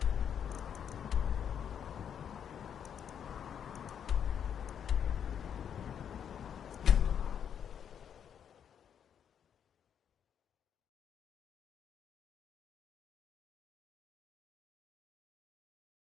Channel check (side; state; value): right; quieter; 8.4 dB